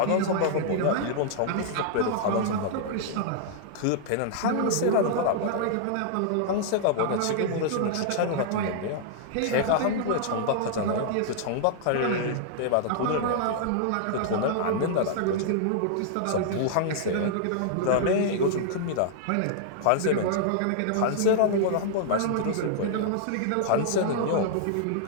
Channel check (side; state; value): both; different; correlation -0.01